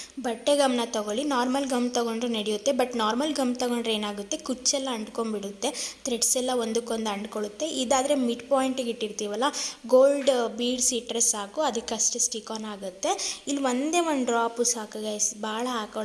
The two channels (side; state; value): both; identical; correlation 1.00